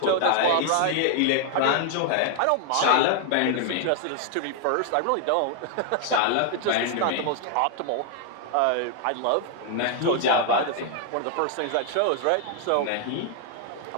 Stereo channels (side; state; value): both; different; correlation 0.00